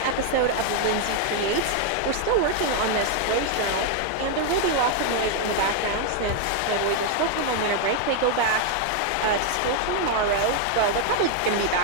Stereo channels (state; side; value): different; both; correlation 0.00